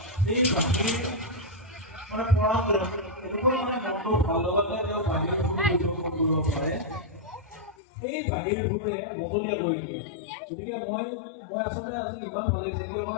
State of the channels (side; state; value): right; drops out; at 7.8 s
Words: সেই বাঁহীৰ মানে পৰম্পৰা এনেকুৱা মানে মনটো ভাল লগাতে তেওঁ বাঁহীৰ পৰিৱেশন কৰিব পাৰে, সেই বাঁহীৰ সুৰে মহলীয়া কৰি দিয়ে। গতিকে মই আচলতে আজি ইমান ভাল লাগিছে,